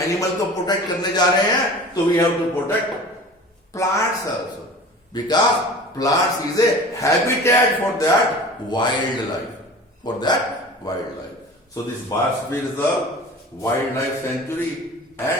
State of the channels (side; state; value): both; normal; correlation 0.40